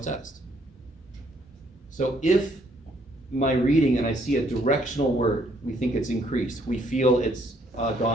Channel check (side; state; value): both; normal; correlation 0.68